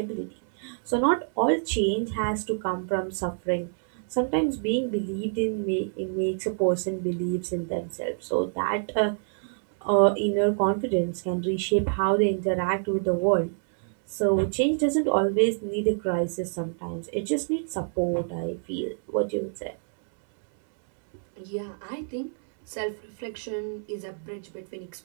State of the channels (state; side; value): silent; left; 60 dB below the other